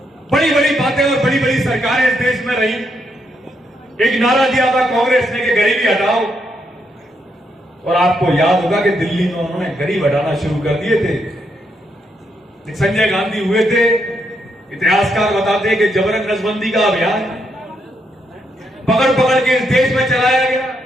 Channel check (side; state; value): both; normal; correlation 0.78